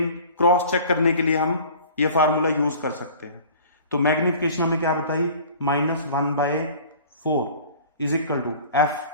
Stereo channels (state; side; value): inverted; both; correlation -0.45